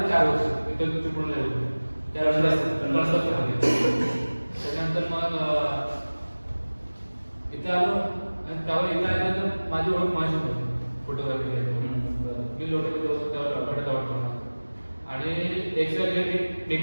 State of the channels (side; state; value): both; inverted; correlation -1.00